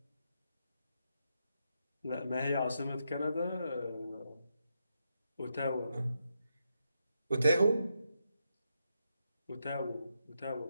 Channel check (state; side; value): inverted; both; correlation -0.82